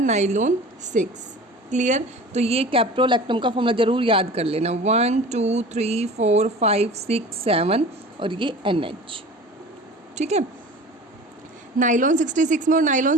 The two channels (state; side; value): normal; both; correlation 0.39